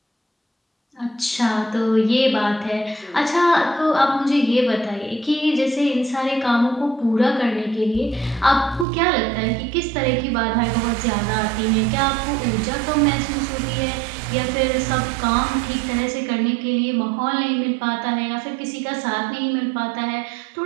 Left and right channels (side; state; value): left; drops out; at 8.8 s